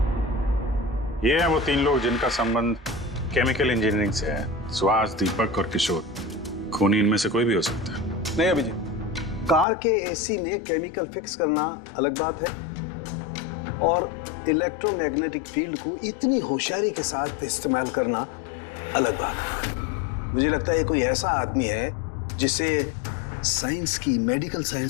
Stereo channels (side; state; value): right; drops out; at 9.7 s